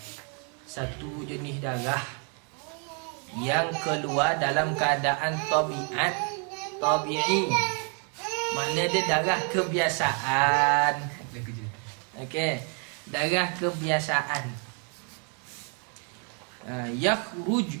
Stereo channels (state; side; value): quieter; left; 38.7 dB